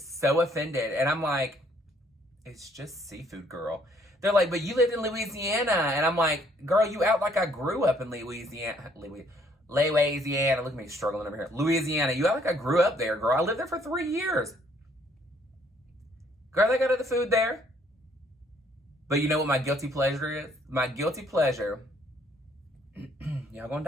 offended, and I'm like, it's just seafood, girl. They're like, but you lived in Louisiana. And I'm like, girl, you act like I grew up in Louisiana. Louisiana. Look at me struggling over here. Louisiana. You act like I grew up there, girl. I lived there for 3 years. Girl, they got other food there. But you know what my guilty pleasure is? My guilty pleasure. Y'all gonna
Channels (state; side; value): normal; both; correlation 0.65